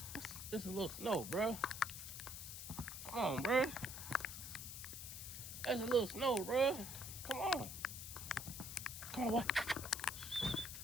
It's a little snow, bro. Come on, bro. That's a little snow, bro. Come on. Come on, boy.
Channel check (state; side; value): noise; left; hiss, 8 dB below the sound